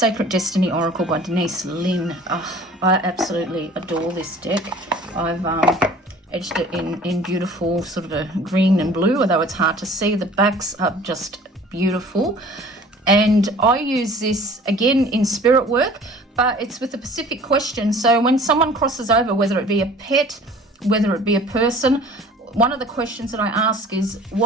Destiny Oracle by Denise Lynn. Oh, I absolutely adore this deck. I've edged it in beautiful sort of a green and blue, although it's hard to see. The backs are just beautiful. And I use this again in spirit work, but it's with a specific question. So when someone crosses over, whether it be a pet, whether it be a person, one of the questions that I ask is,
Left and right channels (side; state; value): both; normal; correlation 0.48